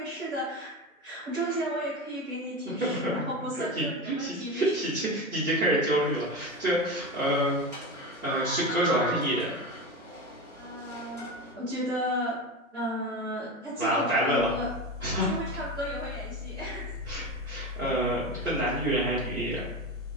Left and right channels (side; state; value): both; normal; correlation 0.23